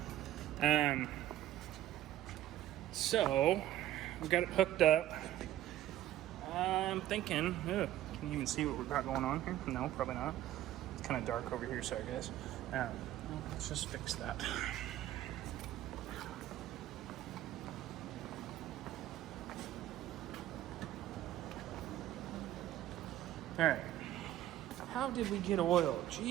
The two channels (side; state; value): left; quieter; 13.3 dB